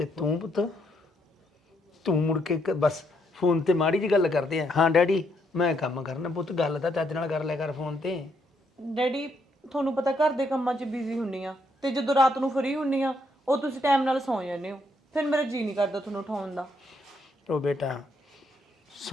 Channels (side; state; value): both; normal; correlation 0.74